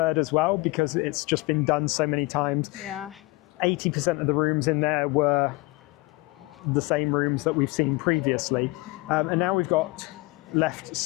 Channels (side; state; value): right; quieter; 23.0 dB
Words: 3rd as well, because it's just been done so many times. Yeah. 80% of the rooms in there were the same rooms that we've seen previously, and now we've got left